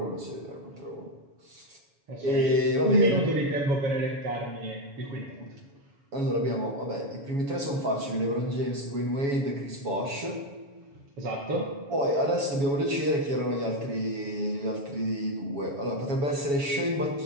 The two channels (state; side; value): late; left; 7.1 ms